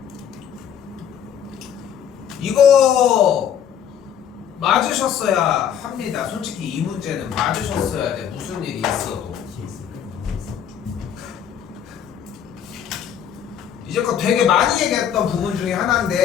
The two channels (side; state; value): right; quieter; 8.9 dB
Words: 이거 맞으셨어야 합니다. 솔직히 이 문제는 맞으셨어야 돼. 무슨 일이 있어도. 이제껏 되게 많이 얘기했던 부분 중에